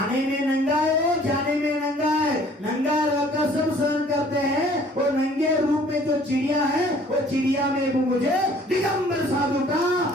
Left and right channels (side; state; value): both; normal; correlation 0.55